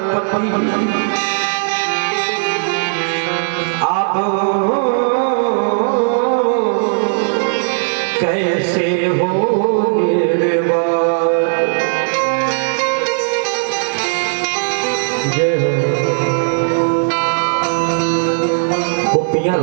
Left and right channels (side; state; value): left; silent; digital silence